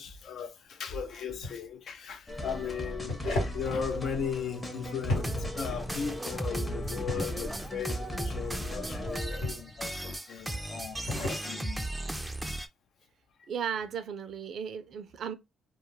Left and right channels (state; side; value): normal; both; correlation 0.73